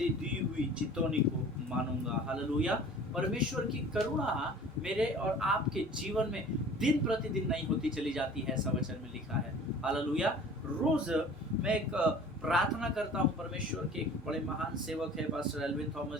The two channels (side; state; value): both; normal; correlation 0.45